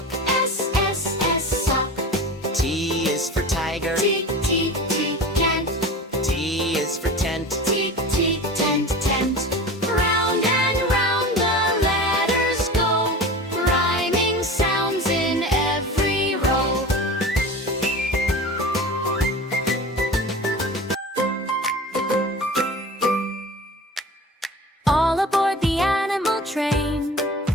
S, sock. T is for tiger, T, tent. T is for tent. Tent. Round and round the letters go, rhyming sounds in every row. All aboard the animal train,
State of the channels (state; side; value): normal; both; correlation 0.34